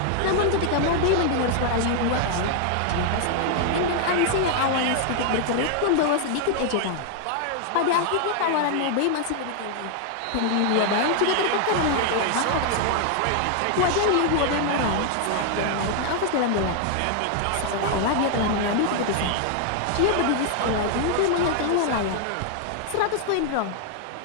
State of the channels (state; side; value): different; both; correlation 0.00